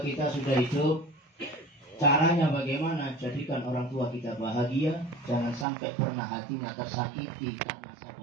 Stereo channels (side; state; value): left; drops out; at 5.7 s